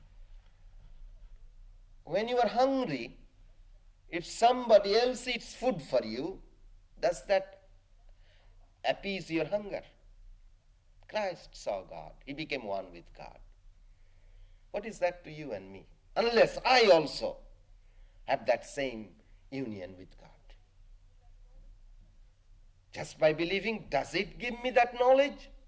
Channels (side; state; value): both; identical; correlation 1.00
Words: When you are hungry, if somebody else eats food for you, does that appease your hunger? Christ saw God. He became one with God. What is that to you and me? Unless I also have that same union with God. Just by believing, does it give me that knowledge?